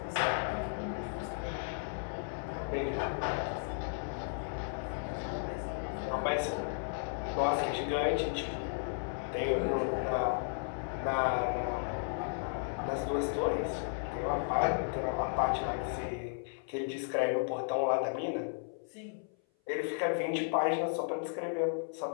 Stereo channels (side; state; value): right; silent; 55 dB below the other